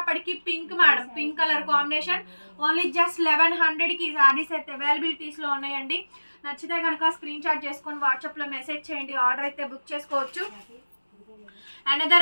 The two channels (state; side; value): inverted; both; correlation -1.00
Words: pink madam. Pink colour combination. Only just 1100కి ఈ శారీస్ అయితే అవైలబిలిటీస్ లో ఉన్నాయండి. నచ్చితే కనుక స్క్రీన్ షాట్ చేసుకొని వాట్సాప్ లో మెసేజ్ చేయండి. ఆర్డర్ అయితే బుక్ చేసుకోవచ్చు.